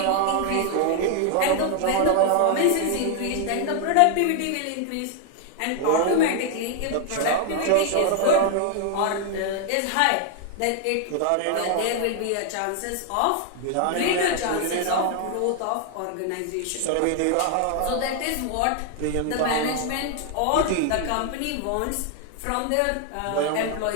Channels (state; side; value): different; both; correlation 0.00